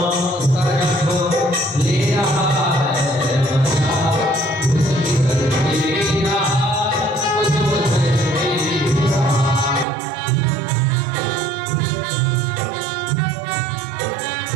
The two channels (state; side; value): drops out; left; at 9.9 s